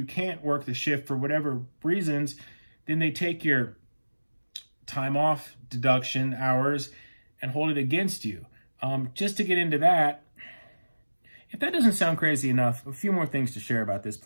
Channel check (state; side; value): inverted; both; correlation -1.00